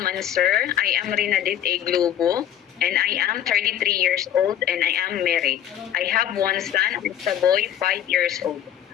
and sir. I am Rinadit A. Globo and I am 33 years old and I am married. I have one son and a boy 5 years old.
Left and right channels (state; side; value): quieter; right; 10.6 dB